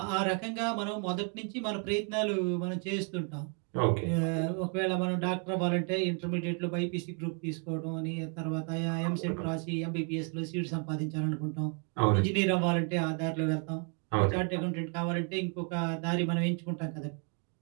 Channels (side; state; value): left; quieter; 39.7 dB